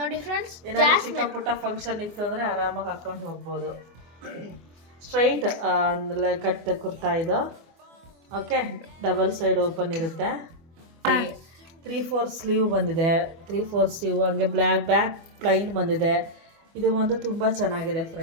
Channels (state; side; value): late; left; 24 ms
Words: ಫ್ರೆಂಡ್ಸ್. ಏನಾದ್ರು ಚಿಕ್ಕ ಪುಟ್ಟ ಫಂಕ್ಷನ್ ಇತ್ತು ಅಂದ್ರೆ ಆರಾಮಾಗಿ ಹಾಕೊಂಡು ಹೋಗ್ಬೋದು. ಸ್ಟ್ರೈಟ್ ಕಟ್ ಕುರ್ತಾ ಇದು. ಓಕೆ, ಡಬಲ್ ಸೈಡ್ ಓಪನ್ ಇರುತ್ತೆ. 3/4 ಸ್ಲೀವ್ ಬಂದಿದೆ. 3/4 ಸ್ಲೀವ್, ಹಂಗೆ ಬ್ಯಾಕ್ ಪ್ಲೈನ್ ಬಂದಿದೆ. ಇದು ಒಂದು ತುಂಬ ಚೆನ್ನಾಗಿದೆ